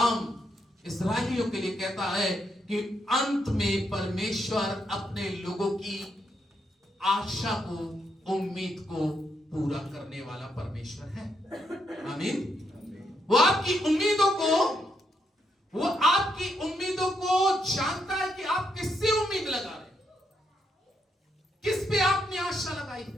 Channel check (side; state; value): both; normal; correlation 0.79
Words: इस्राएलियों के लिए कहता है कि अंत में परमेश्वर अपने लोगों की आशा को, उम्मीद को पूरा करने वाला परमेश्वर है। आमीन। वो आपकी उम्मीदों को जानता है कि आप किससे उम्मीद लगा रहे हैं, किस पे आपने आशा लगाई